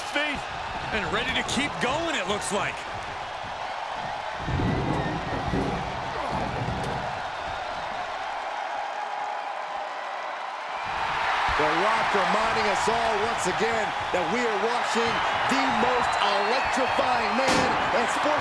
feet. And ready to keep going, it looks like. The Rock reminding us all once again that we are watching the most electrifying man in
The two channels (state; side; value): identical; both; correlation 1.00